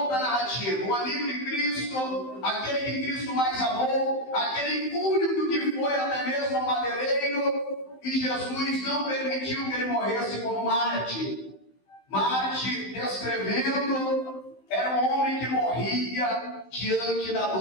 narrativa. O amigo de Cristo, aquele que Cristo mais amou, aquele único que foi até mesmo ao madeireiro, e Jesus não permitiu que ele morresse como Marte. Marte, descrevendo, era um homem que morria diante da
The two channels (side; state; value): right; late; 15 ms